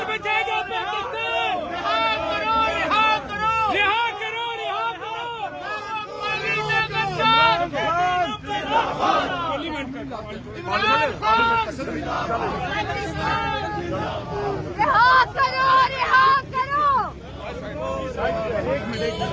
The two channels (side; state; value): both; identical; correlation 1.00